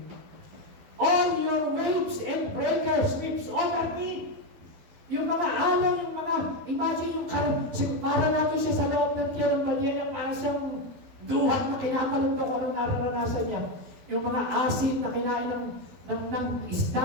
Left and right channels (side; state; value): left; late; 12 ms